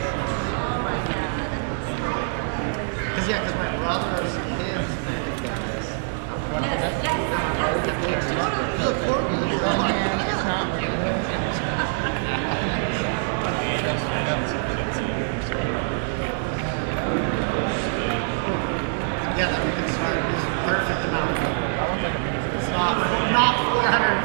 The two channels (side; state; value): left; silent; 62 dB below the other